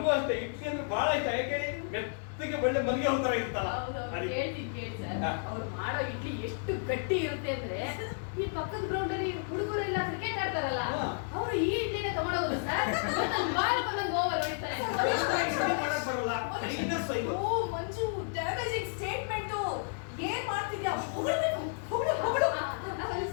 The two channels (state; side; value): silent; right; digital silence